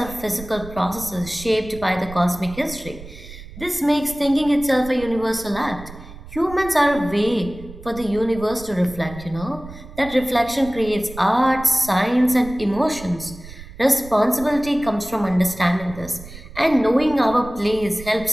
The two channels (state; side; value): noise; right; rumble, 16 dB below the sound